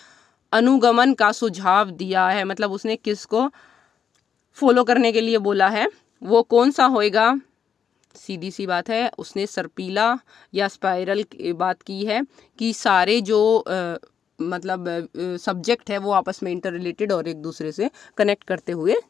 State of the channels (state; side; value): quieter; right; 7.6 dB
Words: अनुगमन का सुझाव दिया है? मतलब उसने किसको फॉलो करने के लिए बोला है, वो कौन सा होएगा? सीधी सी बात है, उसने सर्पिला या स्पाइरल की बात की है कि सारे जो मतलब सब्जेक्ट है वो आपस में इंटर रिलेटेड और एक दूसरे से कनेक्ट करते हुए